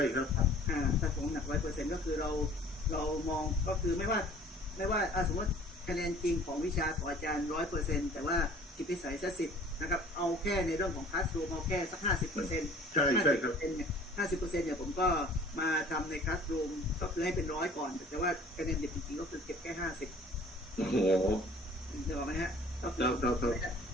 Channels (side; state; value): both; normal; correlation 0.50